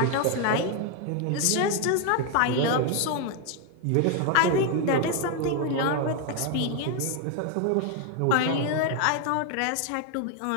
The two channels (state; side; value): different; both; correlation 0.01